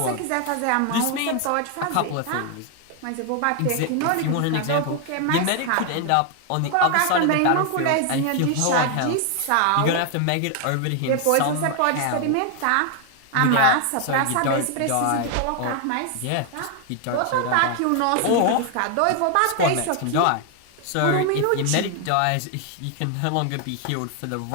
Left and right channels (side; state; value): both; different; correlation 0.00